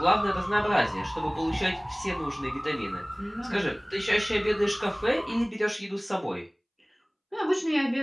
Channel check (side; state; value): both; identical; correlation 1.00